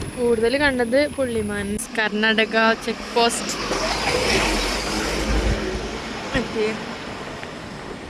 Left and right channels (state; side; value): identical; both; correlation 1.00